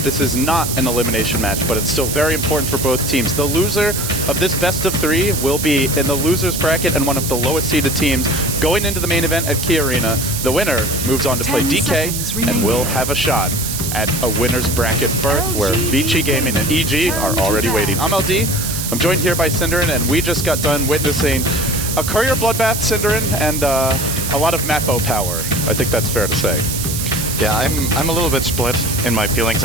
This is not an elimination match, but it's still very important for both teams. The loser of this best of 3 will be in the loser's bracket and one of the lowest seeded teams going into the main event at Key Arena. The winner moves on to play DK and will have a shot at a winner's bracket berth where Vici Gaming and EG are already waiting. I'm LD. I'm joined here by Cinderin, and we just got done witnessing a courier bloodbath, Cinderin, and a lot of Mappo power. I think that's fair to say. Yeah, I'm a little bit split in my feelings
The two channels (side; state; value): right; noise; hiss, 4 dB below the sound